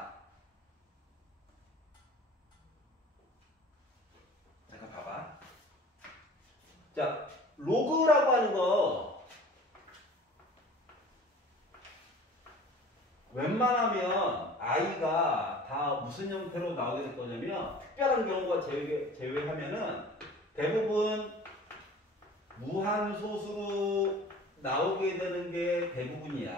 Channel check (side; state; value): both; normal; correlation 0.44